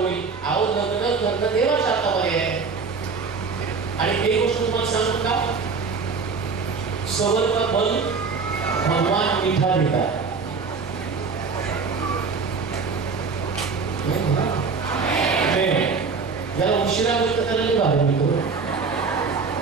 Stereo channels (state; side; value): quieter; left; 4.9 dB